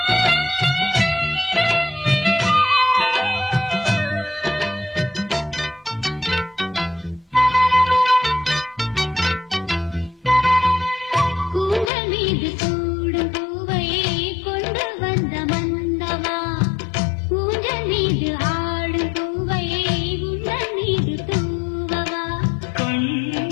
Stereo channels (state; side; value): drops out; right; at 11.9 s